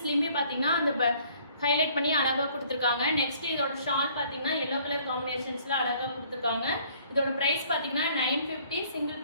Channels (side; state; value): both; inverted; correlation -0.59